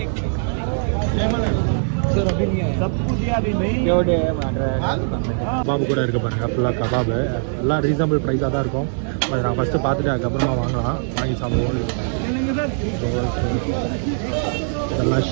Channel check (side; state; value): left; silent; 65 dB below the other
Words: கபாபு கூட இருக்க பாருங்க, ஃபுல்லாக கபாபு எல்லாம் ரீசனபிள் ப்ரைஸாக தான் இருக்கும். அது நான் ஃபஸ்ட்டு பார்த்துட்டு அதுக்கப்புறமா வாங்கலாம், வாங்கி சாப்பிடுவோம். இதெல்லாம்